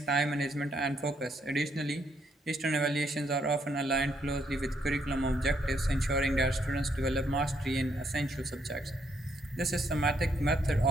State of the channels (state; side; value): normal; both; correlation 0.74